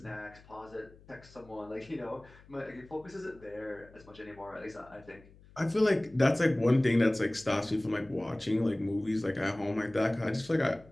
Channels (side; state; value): left; noise; hum, 24 dB below the sound